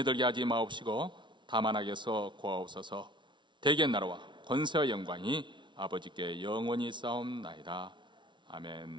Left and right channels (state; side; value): late; left; 0.23 ms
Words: 들게 하지 마옵시고 다만 악에서 구하옵소서. 대개 나라와 권세와 영광이 아버지께 영원히 싸움나이다.